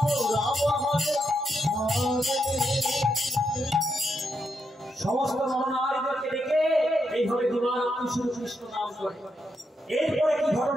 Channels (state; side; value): normal; both; correlation 0.82